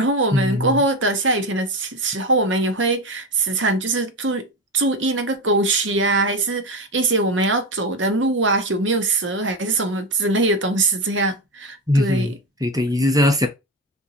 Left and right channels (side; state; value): both; normal; correlation 0.18